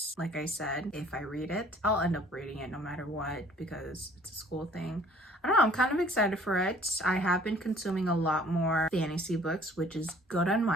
Like I said, if I read it, I'll end up reading it no matter what because it's a school thing. I don't know, I'm kind of excited for it. I have been consuming a lot more fantasy books, which is good on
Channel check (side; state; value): both; normal; correlation 0.55